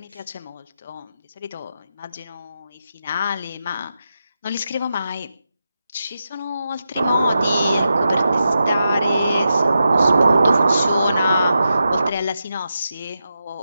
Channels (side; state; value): both; inverted; correlation -0.88